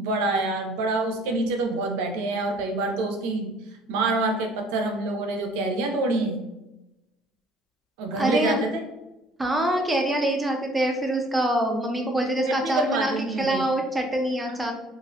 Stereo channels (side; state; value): both; normal; correlation 0.56